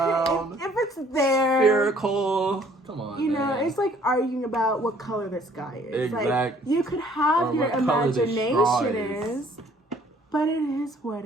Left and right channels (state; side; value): normal; both; correlation 0.59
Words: If it's there, spherical. Come on, man. It's like arguing about what color the sky is. Exactly. Like, you could have your imagination is, but it is what